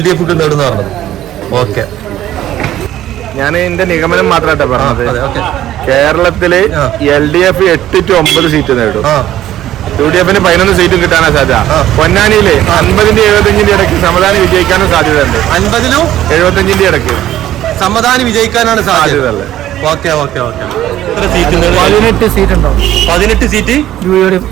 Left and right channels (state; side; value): quieter; left; 13.0 dB